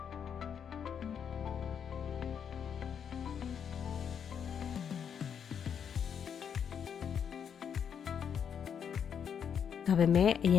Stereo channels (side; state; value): right; quieter; 7.7 dB